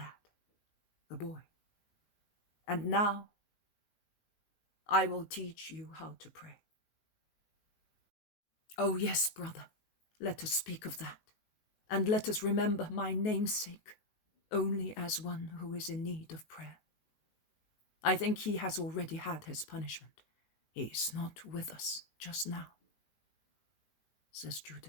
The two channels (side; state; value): right; late; 19 ms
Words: the boy. And now I will teach you how to pray. Oh yes, brother, let us speak of that, and let us remember my namesake only as one who is in need of prayer. I think he has already had his punishment. He is not with us just now, says